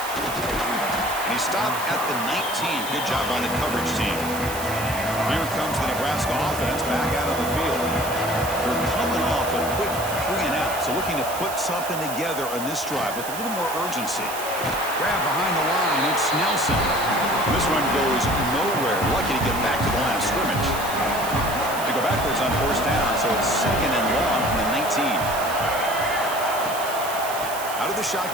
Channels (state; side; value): noise; right; hiss, 10 dB below the sound